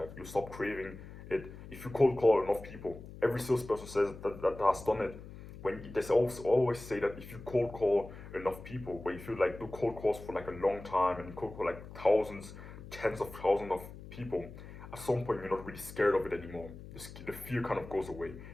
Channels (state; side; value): noise; left; hum, 14 dB below the sound